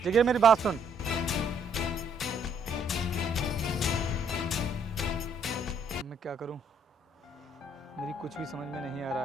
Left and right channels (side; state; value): both; normal; correlation 0.67